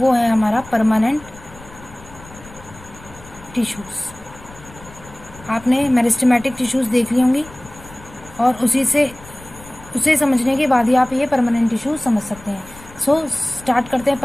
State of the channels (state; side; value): noise; left; rumble, 20 dB below the sound